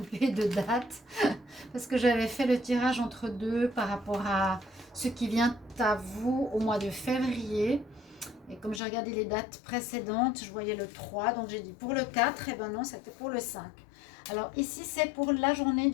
de date parce que j'avais fait le tirage entre deux par rapport à ce qui vient à vous au mois de février. Et comme j'ai regardé les dates précédentes, je voyais le 3, donc j'ai dit pour le 4, et ben non, c'était pour le 5. Alors ici, c'est pour la journée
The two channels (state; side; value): drops out; right; at 8.8 s